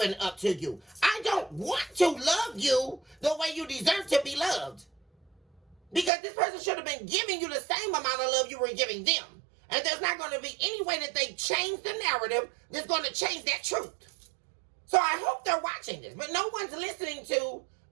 up to you. I don't want to love you the way you deserve to be loved. Because this person should have been giving you the same amount of love you were giving them. And there's not going to be any way that they change the narrative that's going to change that truth. So I hope they're watching this. But no one's listening to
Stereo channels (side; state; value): left; drops out; at 6.1 s